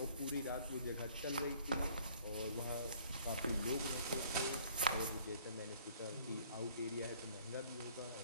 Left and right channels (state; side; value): inverted; both; correlation -0.57